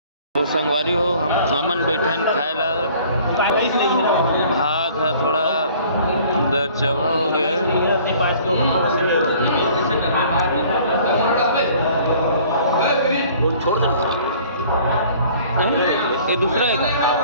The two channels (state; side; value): inverted; both; correlation -0.53